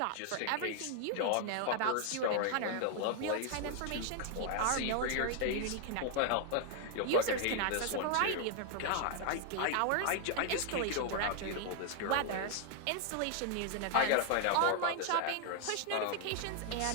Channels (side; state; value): both; different; correlation 0.00